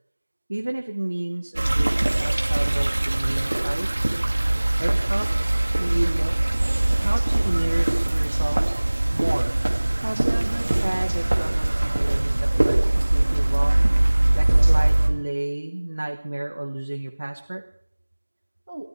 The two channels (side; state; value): both; inverted; correlation -1.00